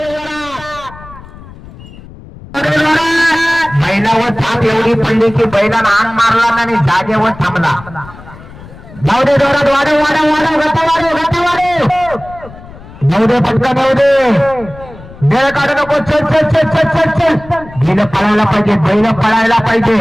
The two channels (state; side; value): noise; left; rumble, 18 dB below the sound